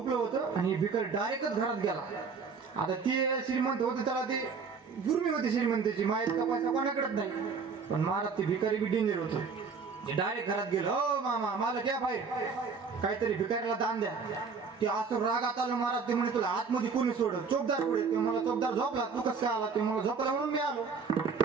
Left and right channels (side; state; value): left; quieter; 5.3 dB